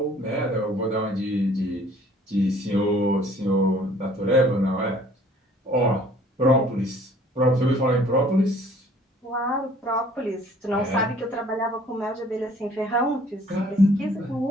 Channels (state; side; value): normal; both; correlation 0.55